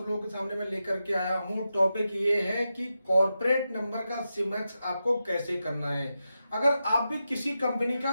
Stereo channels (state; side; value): inverted; both; correlation -0.89